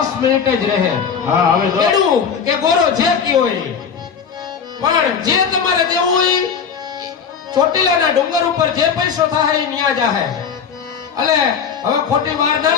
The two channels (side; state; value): right; quieter; 6.7 dB